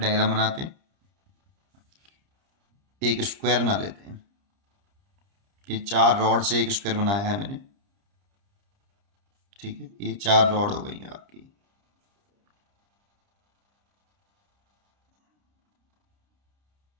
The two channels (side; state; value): left; late; 30 ms